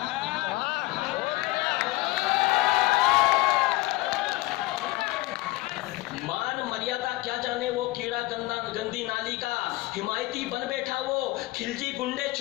मान मर्यादा क्या जाने वो कीड़ा गंदी नाली का। हिमायती बन बैठा वो खिलजी गुंडे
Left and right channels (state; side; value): quieter; right; 19.8 dB